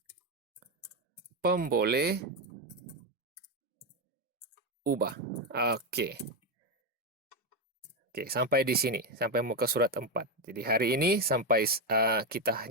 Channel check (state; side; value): normal; both; correlation 0.08